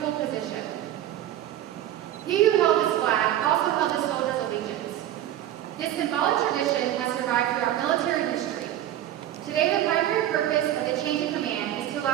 position. He who held this flag also held the soldier's allegiance. This symbolic tradition has survived throughout military history. Today, the primary purpose of the change of command is to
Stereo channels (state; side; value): quieter; left; 12.5 dB